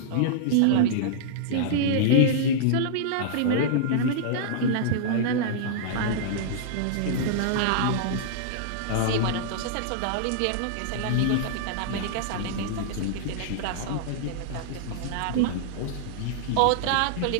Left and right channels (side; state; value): both; different; correlation -0.02